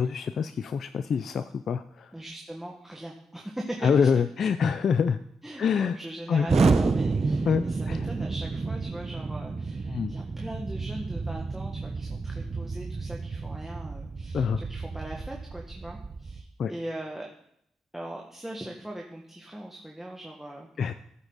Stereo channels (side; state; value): both; normal; correlation 0.83